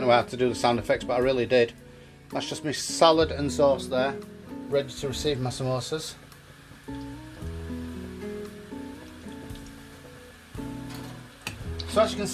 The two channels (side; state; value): both; identical; correlation 1.00